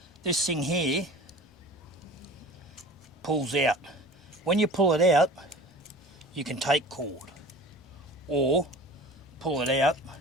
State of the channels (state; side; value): normal; both; correlation 0.41